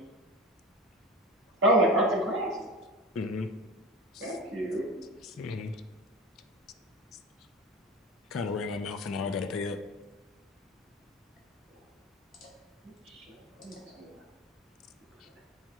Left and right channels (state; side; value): normal; both; correlation 0.30